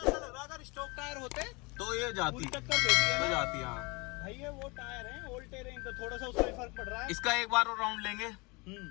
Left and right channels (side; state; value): right; quieter; 27.3 dB